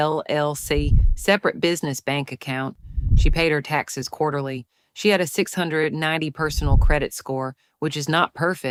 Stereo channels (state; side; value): identical; both; correlation 1.00